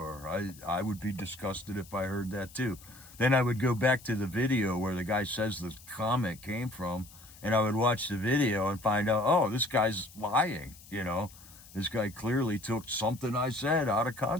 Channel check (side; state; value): left; noise; hiss, 21 dB below the sound